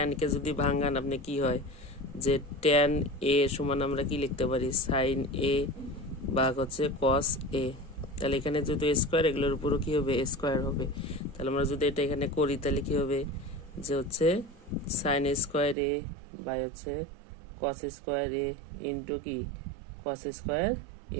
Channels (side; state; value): left; drops out; at 15.8 s